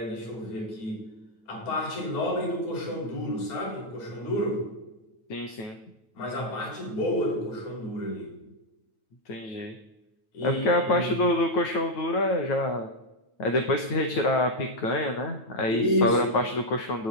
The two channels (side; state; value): right; late; 9.1 ms